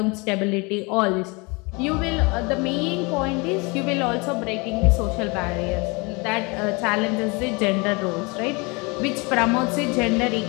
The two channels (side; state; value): right; quieter; 28.1 dB